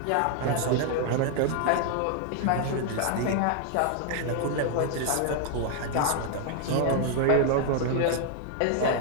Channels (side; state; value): both; different; correlation 0.00